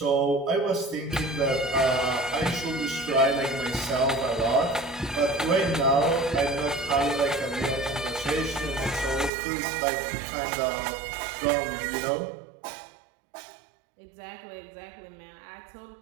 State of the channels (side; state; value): left; drops out; at 9.3 s